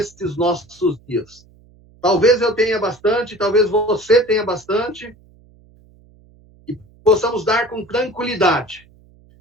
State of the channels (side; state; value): right; noise; hum, 28 dB below the sound